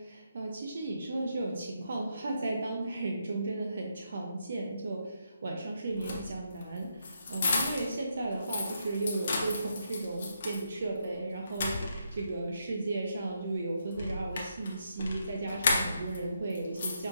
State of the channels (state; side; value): inverted; both; correlation -0.80